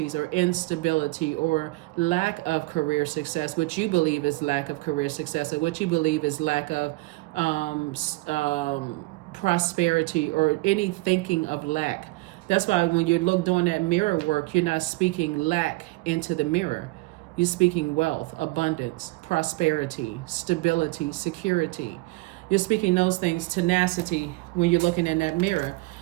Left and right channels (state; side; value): quieter; left; 22.8 dB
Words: or instability or lack of career success, what you believe is lack of career success, or what you believe is lack of prosperity, or any thinking of lack. That's why when you look doing that mirror work, you're not speaking lack into the mirror. You're speaking wealth, abundance, prosperity, stability, security. You're speaking those things, tenacity, when you're looking in that mirror.